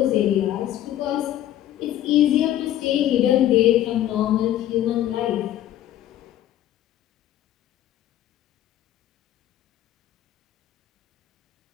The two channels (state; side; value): quieter; right; 12.4 dB